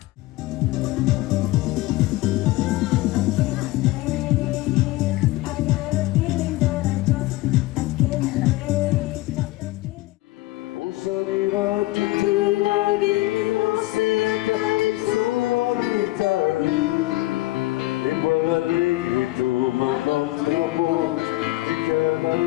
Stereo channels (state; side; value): quieter; right; 18.6 dB